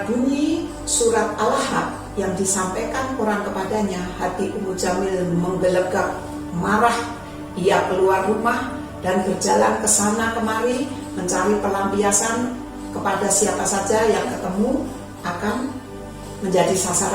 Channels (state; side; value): identical; both; correlation 1.00